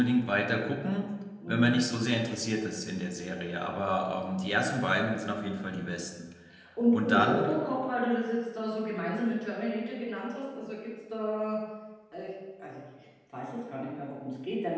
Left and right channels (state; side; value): identical; both; correlation 1.00